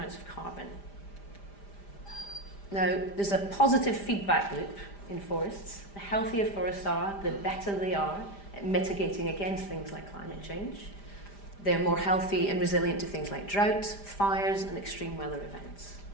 of carbon. Now, there's a positive feedback loop in forests. The healthier forests are, the better they are at mitigating against things like climate change. They're more healthy and resilient to things like drought, fires, and extreme weather events.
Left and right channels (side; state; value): right; late; 5.0 ms